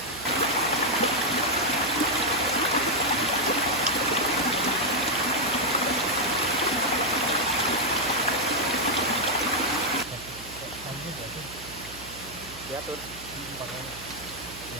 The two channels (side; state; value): right; noise; hum, 17 dB below the sound